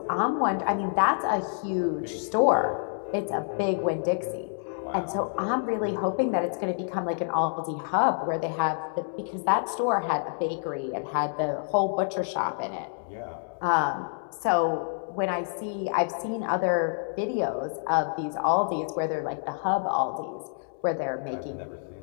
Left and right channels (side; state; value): right; silent; digital silence